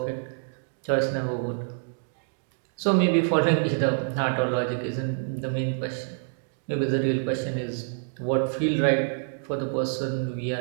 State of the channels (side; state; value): left; silent; digital silence